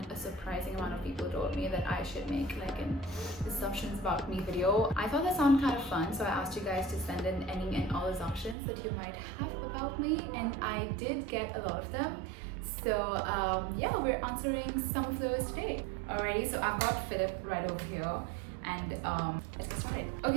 a surprising amount of people told me that I should make like an assumptions about me video. I thought that sounded kind of fun, so I asked you guys to send in any and all assumptions that you might have about me, and I did get a lot of them. So yeah, we're answering some of those today. Alrighty, so I've got Philip right over here, and let's get started.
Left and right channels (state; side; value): drops out; left; at 8.6 s